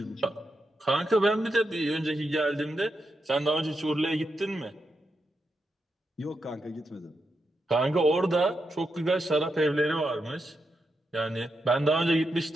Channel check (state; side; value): normal; both; correlation 0.85